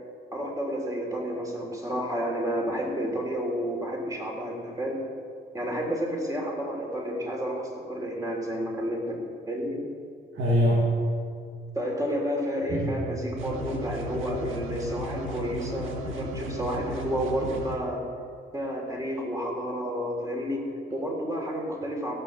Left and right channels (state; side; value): normal; both; correlation 0.60